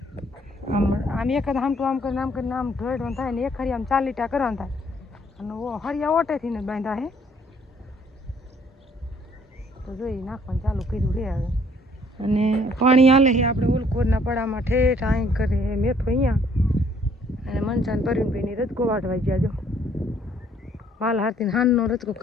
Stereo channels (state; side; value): normal; both; correlation 0.62